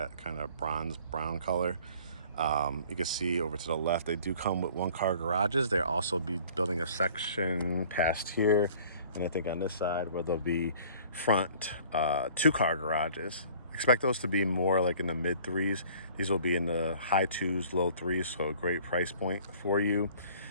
kind of bronze brown color. You can see over to the left, they do come with one-car garages. They'll also be building a section past here, and I think on this side where there'll be front two-car garages. Expect those to be more like in the mid threes. These will be in the high twos, low threes, so a great price point for you.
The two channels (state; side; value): inverted; both; correlation -0.51